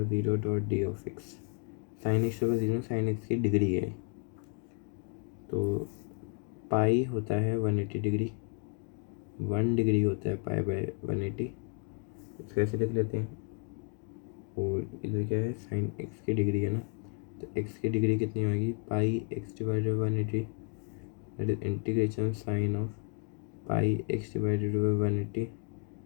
0 dot d of x. Sine x to the power 0 sine x की डिग्री है, तो पाई होता है 180 डिग्री, 1 डिग्री होता है पाई बाय 180, इसको ऐसे लिख लेते हैं। और इधर क्या है, साइन एक्स की डिग्री है ना, तो एक्स की डिग्री कितनी होगी, पाई x divided by 180, that is integration sine of pi x divided by 180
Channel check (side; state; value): right; quieter; 37.6 dB